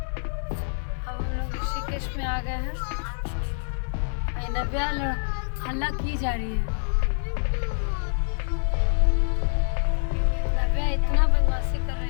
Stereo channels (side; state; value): right; silent; 59 dB below the other